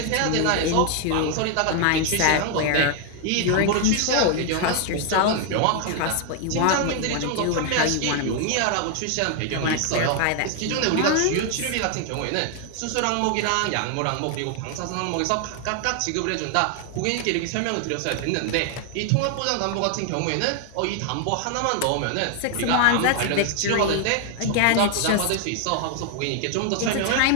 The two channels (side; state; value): both; different; correlation 0.00